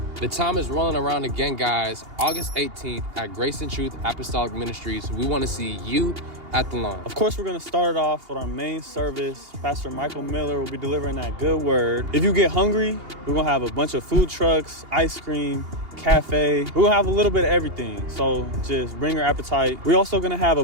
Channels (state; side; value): late; left; 2.8 ms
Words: The time is rolling around again, guys. August 18th at Grace and Truth Apostolic Ministries. We want to see you at the lawn. Of course, we're going to start it off with our main service. Pastor Michael Miller will be delivering that good word. If you get hungry, we're going to have a bunch of food trucks, ice cream, cafe. We're gonna have a little bit of everything, so just bring your appetite. We're also gonna have a